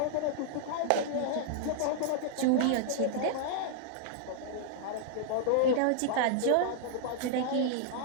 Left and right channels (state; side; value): different; both; correlation -0.01